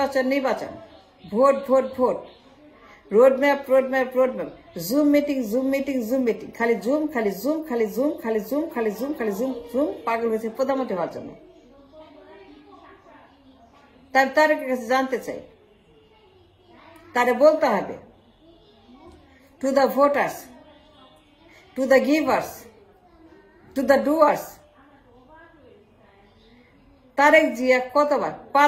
নির্বাচন, vote vote vote, roadmap roadmap roadmap, zoom meeting zoom meeting zoom meeting, খালি জুম খালি জুম খালি জুম খালি জুম খালি জুম খালি জুম জুম, পাগল হয়েছে প্রধানমন্ত্রী হওয়ার জন্য। তার তারেকের কাছে জানতে চাই, তারে বলতে হবে to the voters, to the givers, to the doers, Tarique Zia কতবার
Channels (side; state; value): both; identical; correlation 1.00